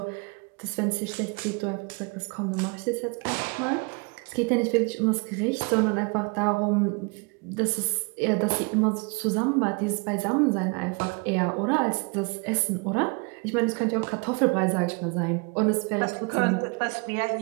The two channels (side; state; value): left; quieter; 32.2 dB